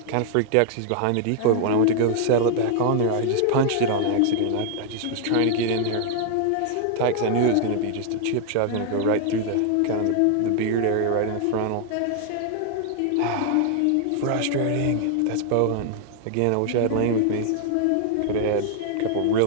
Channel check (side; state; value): both; different; correlation 0.00